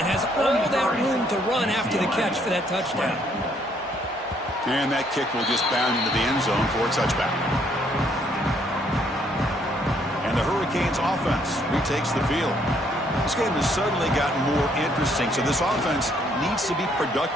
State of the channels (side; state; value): both; normal; correlation 0.68